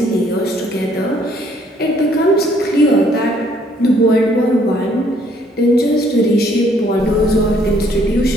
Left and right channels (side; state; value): both; normal; correlation 0.64